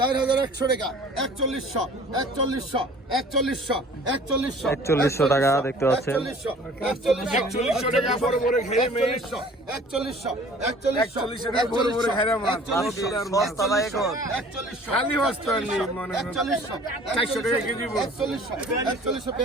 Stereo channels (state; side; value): normal; both; correlation 0.49